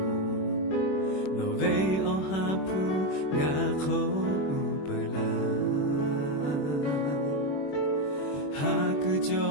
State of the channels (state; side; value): late; right; 21 ms